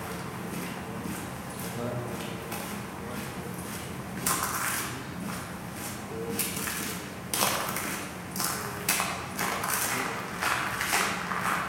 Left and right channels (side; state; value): both; identical; correlation 1.00